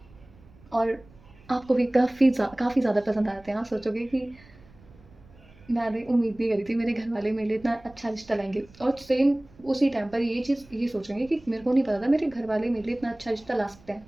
और आपको भी काफ़ी ज़्यादा पसंद आते हैं। आप सोचोगे कि मैंने उम्मीद नहीं करी थी मेरे घरवाले मेरे लिए इतना अच्छा रिश्ता लाएँगे और सेम उसी टाइम पर ये चीज़ ये सोचेंगे कि मेरे को नहीं पता था मेरे घरवाले मेरे लिए इतना अच्छा रिश्ता ला सकते हैं।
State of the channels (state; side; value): noise; right; rumble, 25 dB below the sound